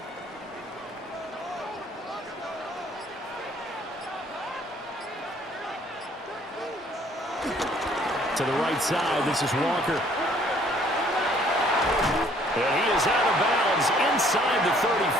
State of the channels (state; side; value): normal; both; correlation 0.61